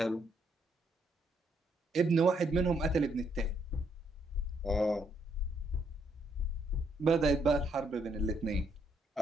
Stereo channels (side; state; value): both; normal; correlation 0.73